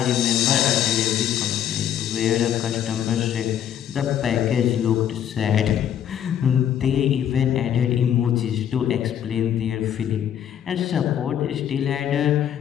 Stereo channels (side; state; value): right; quieter; 9.9 dB